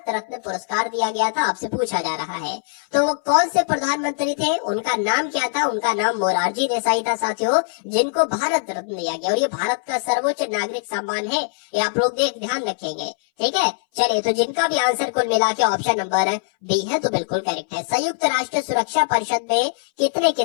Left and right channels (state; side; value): silent; right; 62 dB below the other